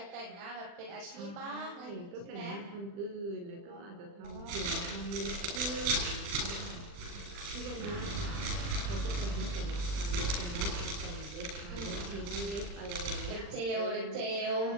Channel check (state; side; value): late; left; 40 ms